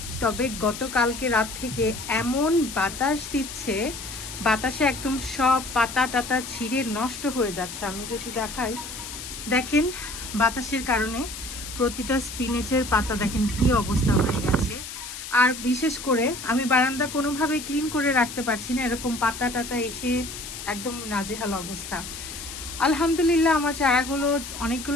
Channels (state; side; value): noise; left; hiss, 10 dB below the sound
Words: তবে গতকালকে রাত থেকে এমন বাতাস দিচ্ছে, বাতাসে একদম সব পাতা টাতা ছিঁড়ে নষ্ট হয়ে যাচ্ছে। আমি যদি দেখাই, দেখেন বাতাসের কারণে প্রতিটা স্পিনেচের পাতা দেখেন কি অবস্থা হয়ে গেছে। আর বিশেষ করে আমি বারান্দা কোনোভাবে ক্লিন করে রাখতে পারছি না, এরকম পাতা টাতা এসে একদম নাজেহাল অবস্থা। আলহামদুলিল্লাহ, আমার চারাগুলো